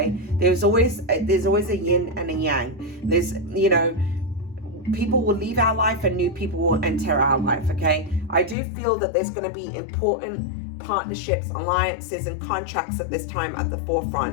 There's always a yin and a yang. There's, you know, people will leave our life and new people will enter our life, okay? I do feel that there's going to be important partnerships, alliances, and contracts at this time at the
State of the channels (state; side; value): drops out; right; at 8.6 s